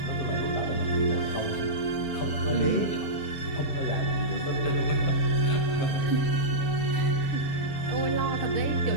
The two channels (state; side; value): late; right; 7.1 ms